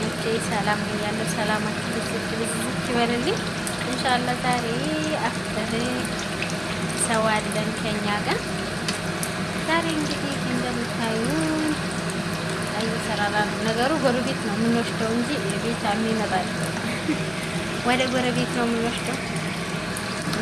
ሰላም ብያለሁ። ሰላማችሁ ብዝት ይበልልኝ። ኢንሻአላህ ዛሬ አፍጥር ሰው አለን ከኛ ጋር። ዛሬ እንግዲህ እንደምታዩ አይሰራራ ነገሩ ጎረቤት ነው የምንወስደው እንጂ ቤት የሚመጣ ወደ ጎረቤት ነው የምንወስደው።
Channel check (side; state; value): left; noise; hum, 22 dB below the sound